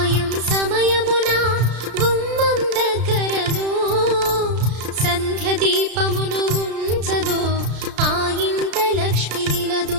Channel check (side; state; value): left; late; 33 ms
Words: సమయమున గుమ్మం దగ్గరను సంధ్య దీపమును ఉంచదో ఆ ఇంట లక్ష్మి నిలదు.